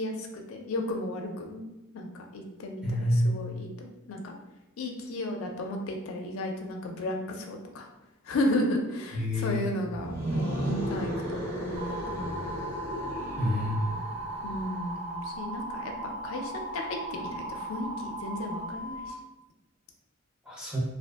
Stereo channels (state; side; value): normal; both; correlation 0.50